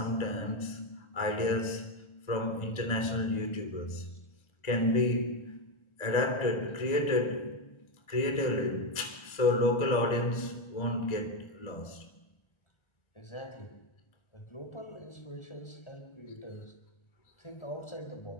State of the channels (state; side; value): late; right; 1.3 ms